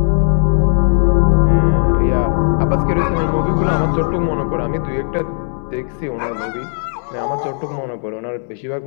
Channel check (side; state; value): right; silent; digital silence